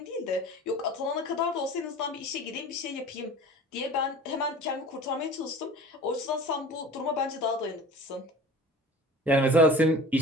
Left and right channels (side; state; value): both; normal; correlation 0.40